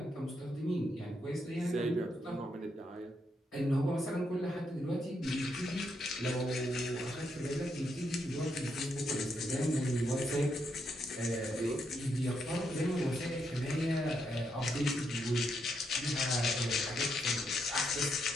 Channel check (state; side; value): normal; both; correlation 0.79